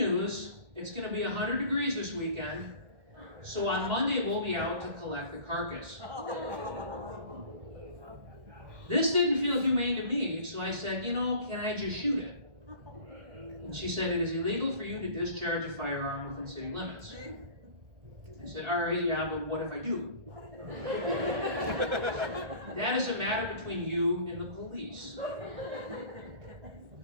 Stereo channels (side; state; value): left; late; 1.6 ms